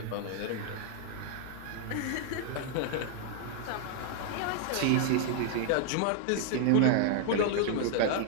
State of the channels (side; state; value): both; different; correlation 0.00